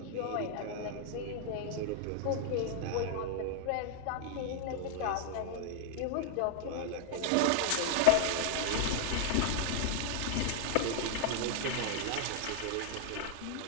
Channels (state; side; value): different; both; correlation 0.00